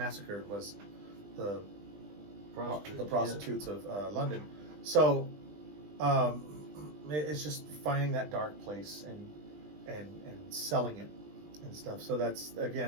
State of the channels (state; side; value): late; left; 20 ms